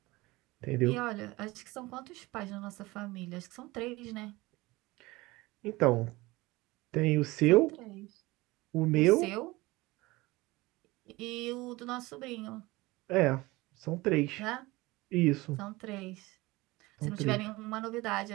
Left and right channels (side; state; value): left; quieter; 21.1 dB